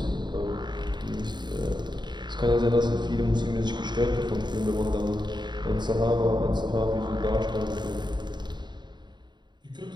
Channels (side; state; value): left; late; 0.21 ms